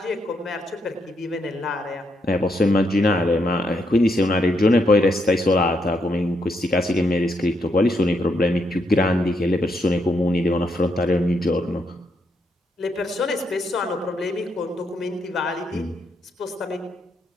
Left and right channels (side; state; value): both; normal; correlation 0.78